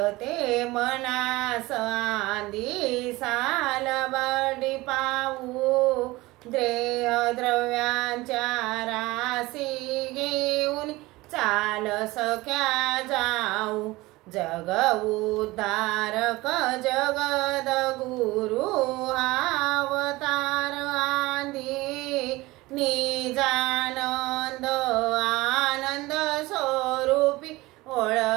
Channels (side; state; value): left; quieter; 20.4 dB